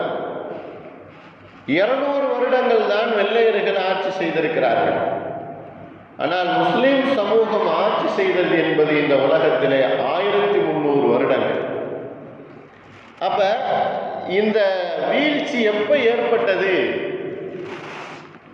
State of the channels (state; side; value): identical; both; correlation 1.00